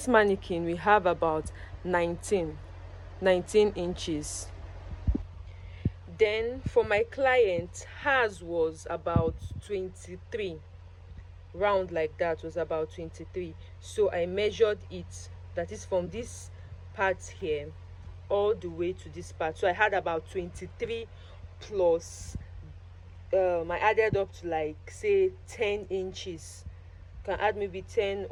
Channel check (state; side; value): identical; both; correlation 1.00